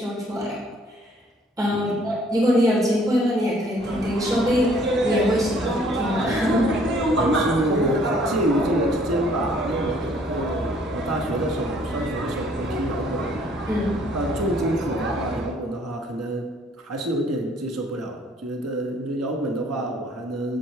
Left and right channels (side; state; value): both; normal; correlation 0.60